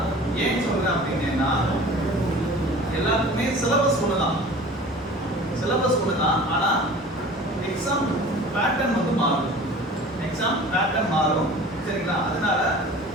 ஏன் சொல்றேன் அப்படின்னா எல்லாருக்குமே சிலபஸ் ஒண்ணுதான், சிலபஸ் ஒண்ணுதான். ஆனா எக்ஸாம் பேட்டர்ன் வந்து மாறும், எக்ஸாம் பேட்டர்ன் மாறும், சரிங்களா? அதனால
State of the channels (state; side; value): normal; both; correlation 0.42